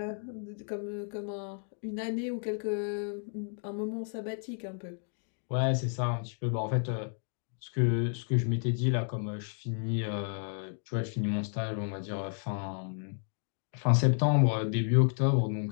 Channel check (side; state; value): right; silent; 56 dB below the other